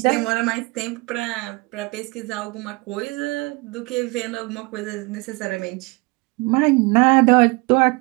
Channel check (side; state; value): left; quieter; 26.5 dB